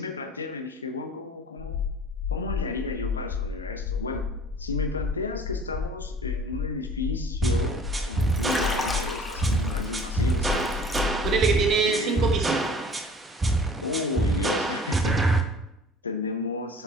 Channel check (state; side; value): normal; both; correlation 0.47